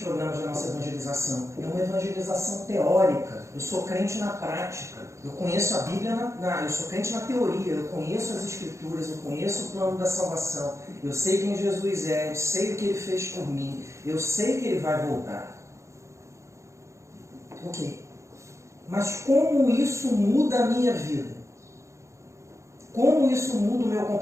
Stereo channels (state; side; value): late; left; 0.14 ms